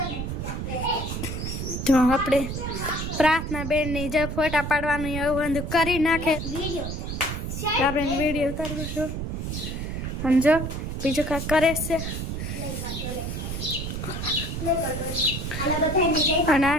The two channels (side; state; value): right; noise; rumble, 4 dB below the sound